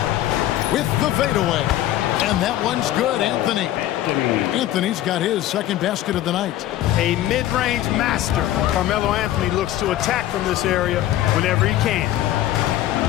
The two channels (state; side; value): quieter; right; 13.6 dB